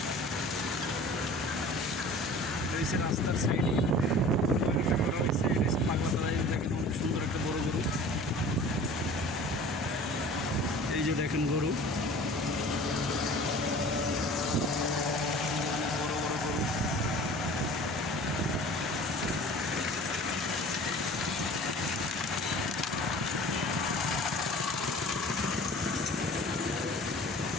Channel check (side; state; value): both; normal; correlation 0.44